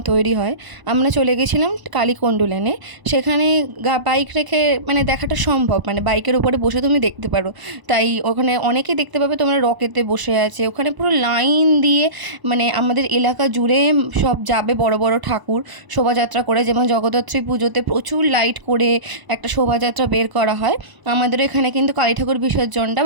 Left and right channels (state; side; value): late; left; 1.0 ms